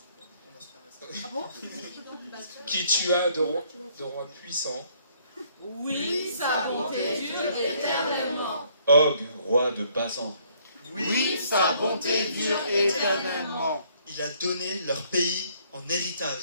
Qui tua de rois puissants. Oui, sa bonté dure éternellement. Og, roi de Basan. Oui, sa bonté dure éternellement. Il a donné leur pays en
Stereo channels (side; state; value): both; inverted; correlation -0.64